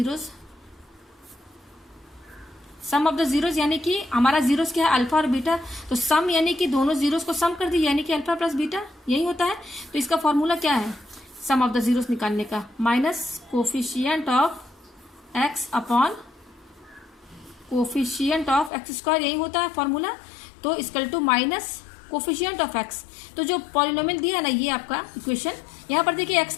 sum of the zeros यानी कि हमारा जीरोस क्या है, अल्फा और बीटा। तो सम यानी कि दोनों जीरोस को सम कर दीजिए, यानी कि अल्फा प्लस बीटा, यही होता है। तो इसका फॉर्मूला क्या है सम ऑफ द जीरोस निकालने का, minus coefficient of x upon coefficient of x square, यही होता है फॉर्मूला। तो equal to minus coefficient of x. तो जो पॉलिनोमियल दिया है ना, ये आपका इक्वेशन, यहाँ पर देखिए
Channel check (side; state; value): right; drops out; at 18.7 s